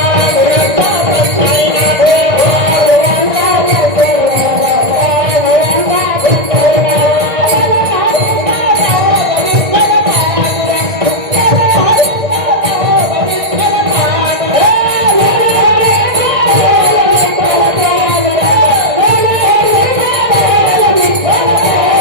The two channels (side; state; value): left; late; 1.8 ms